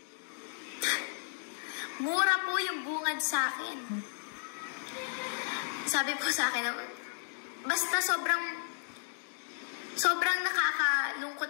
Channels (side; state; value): right; silent; digital silence